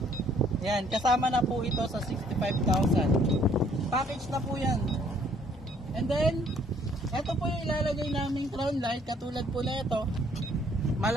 Ayan, kasama na po ito sa 65,000. Package na po yan. And then, ito po yung ilalagay naming crown light. Katulad po na ito.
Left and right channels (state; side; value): normal; both; correlation 0.62